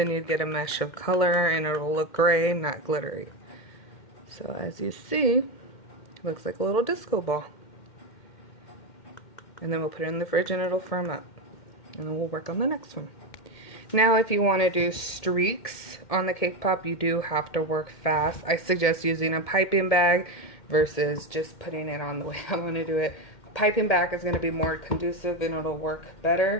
you'd get a mesh of color and it'll look gray, not glittery. So as you see, it looks like a little disco ball. And then we'll put it in the fridge and it'll firm up. And then we'll work on the next one. Now if you want to do streaks on the cake pop, you do have to work fast. I suggest using a piping bag versus just putting it on the way I want to do it. Piping bag is going to be more conducive and it'll work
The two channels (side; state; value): right; late; 2.1 ms